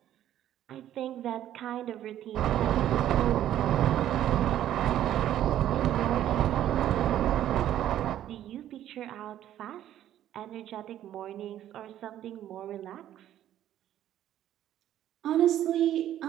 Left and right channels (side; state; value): left; quieter; 11.8 dB